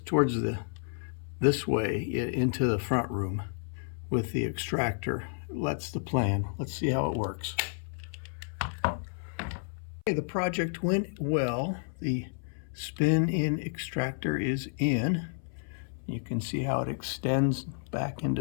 towards this way into the front room with the extractor. That's the plan. Let's see how it works. Okay, the project went well. The spin-in extractor is in. You can see how it extends back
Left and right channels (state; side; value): silent; right; 57 dB below the other